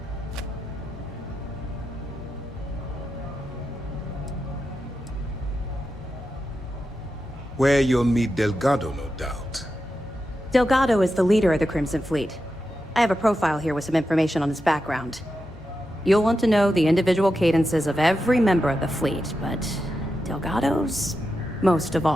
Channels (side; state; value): both; normal; correlation 0.89